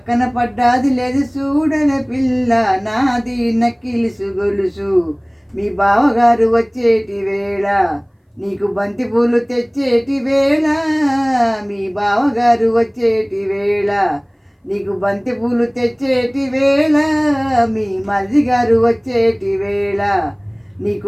పడ్డాది లేదు చూడలే పిల్ల నాది నక్కిలిసు గొలుసు. మీ బావగారు వచ్చేటి వేళ నీకు బంతి పూలు తెచ్చేటి వేళ. మీ బావగారు వచ్చేటి వేళ నీకు బంతి పూలు తెచ్చేటి వేళ. మీ మరిది గారు వచ్చేటి వేళ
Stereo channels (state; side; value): identical; both; correlation 1.00